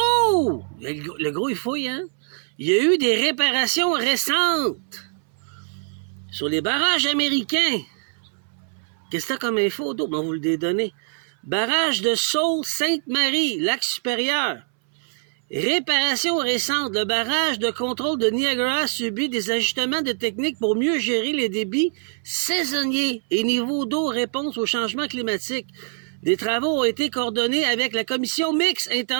Le gros, il fouille, hein? Il y a eu des réparations récentes sur les barrages américains. Qu'est-ce que t'as comme info d'autre? On va vous le donner. Barrage de Sault-Sainte-Marie, lac supérieur. Réparation récente. Le barrage de contrôle de Niagara subit des ajustements de technique pour mieux gérer les débits saisonniers et niveaux d'eau réponse au changement climatique. Des travaux ont été coordonnés avec la Commission mixte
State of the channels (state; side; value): silent; left; 63 dB below the other